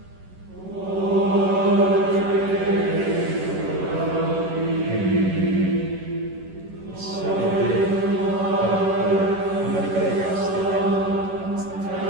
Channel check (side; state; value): left; late; 11 ms